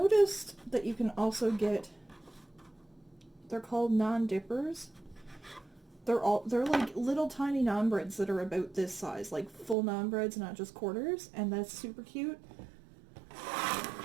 that you can also get, they're called naan dippers. They're like little tiny naan breads that are about this size, like full naan breads, not just quarters, and that's super cute.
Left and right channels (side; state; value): left; drops out; at 9.8 s